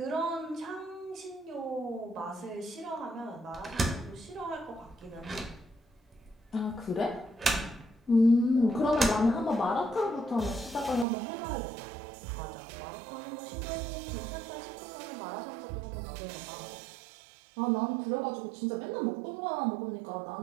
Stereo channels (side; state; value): left; drops out; at 11.1 s